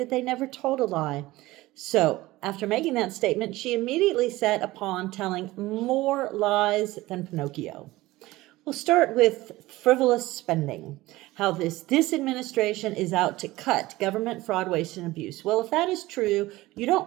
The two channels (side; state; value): left; quieter; 18.5 dB